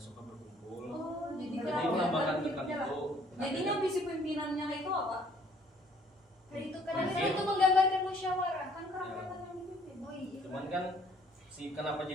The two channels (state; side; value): normal; both; correlation 0.60